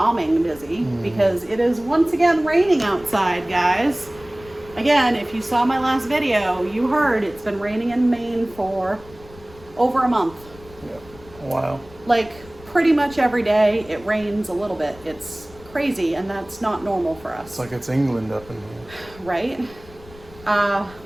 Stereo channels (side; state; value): left; noise; rumble, 22 dB below the sound